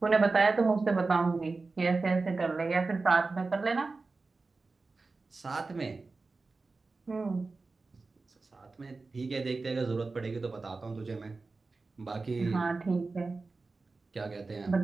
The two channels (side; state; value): left; quieter; 3.8 dB